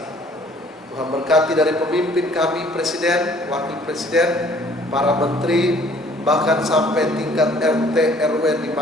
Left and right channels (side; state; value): both; normal; correlation 0.57